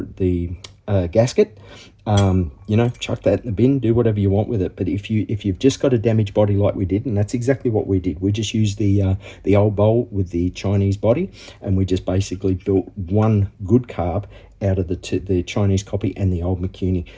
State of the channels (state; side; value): identical; both; correlation 1.00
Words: gasket. You know, chuck that in the bin, do whatever you want with it. But if you've just got a damaged body like we did, and that's exactly what we did, we just used the old bowl with the Chinese body, and we just basically built one good carb out of the Chinese copy and the old Mikuni,